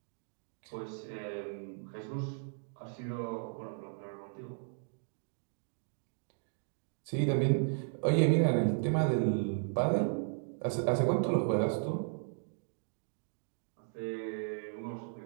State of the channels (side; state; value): left; silent; digital silence